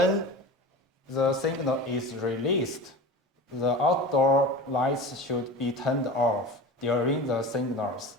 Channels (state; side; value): normal; both; correlation 0.33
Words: the signal is released, the outdoor lights should be turned off during the signals.